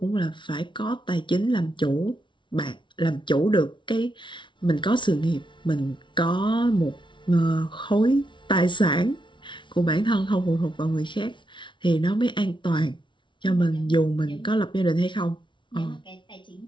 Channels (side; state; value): right; late; 0.24 ms